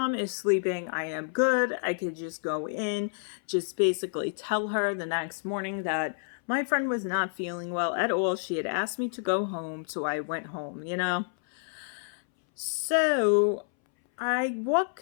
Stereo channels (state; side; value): silent; right; 58 dB below the other